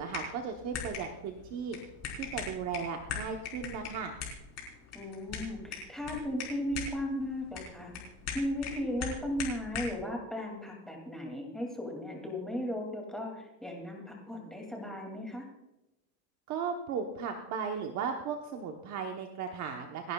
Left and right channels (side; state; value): both; normal; correlation 0.37